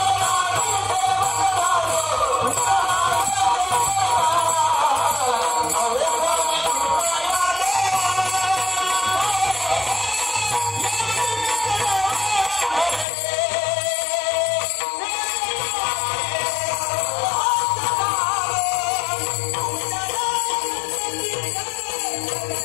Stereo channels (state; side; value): drops out; right; at 13.1 s